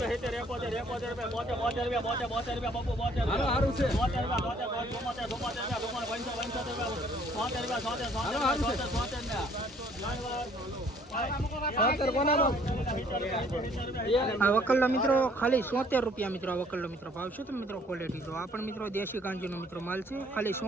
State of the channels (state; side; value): normal; both; correlation 0.60